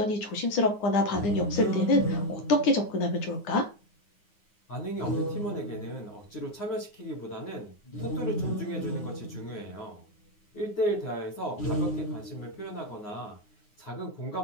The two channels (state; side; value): late; right; 9.7 ms